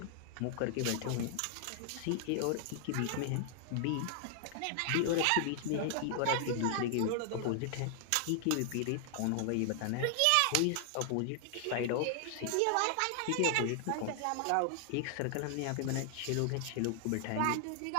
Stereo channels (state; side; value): different; both; correlation 0.00